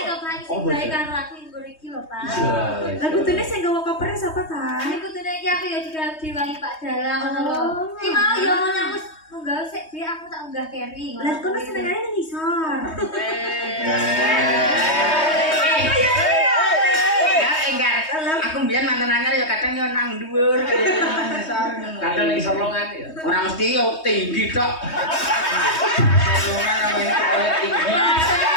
kok Pak sing baik karo aku nggo iki lho, Pak. Lah kudune sing gawa kopernya sapa ta? Ini kudune iki aku ya juga diwangi Pak Dalang ngono lho. Ki mau ya ngono wis munggah sik dhewe aku tak unggah carry. Lah kono senengane nang isor. Ya enggak. Aku mbiyen mantan anyar ya kadang yo nang dhuwur Kadang ning solongan ya. ora mesti yo tinggi tok. Solongan namanya tinggi.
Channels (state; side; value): late; right; 3.2 ms